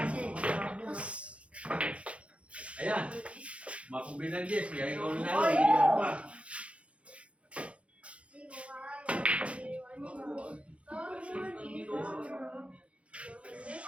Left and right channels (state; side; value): late; left; 0.062 ms